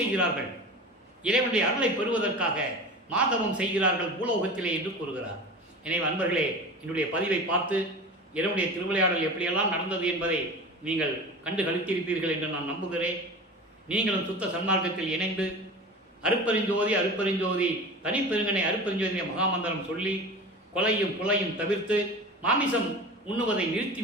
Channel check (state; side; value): normal; both; correlation 0.33